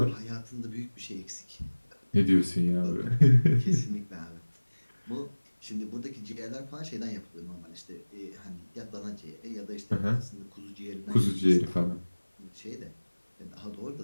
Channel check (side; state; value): both; inverted; correlation -1.00